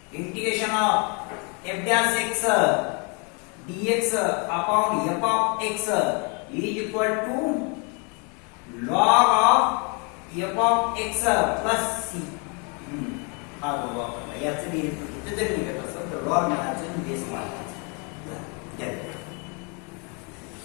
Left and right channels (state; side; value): quieter; right; 34.4 dB